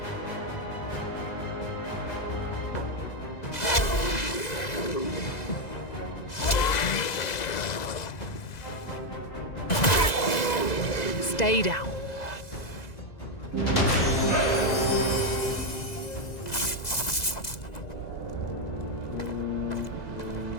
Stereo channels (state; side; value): late; right; 2.0 ms